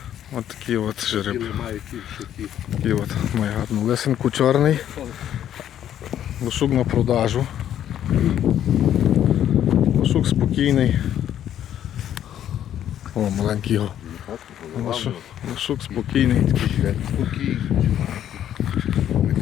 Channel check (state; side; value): quieter; right; 10.7 dB